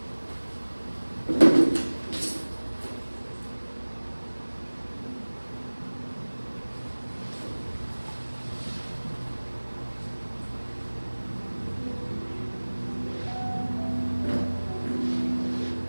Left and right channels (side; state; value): both; inverted; correlation -1.00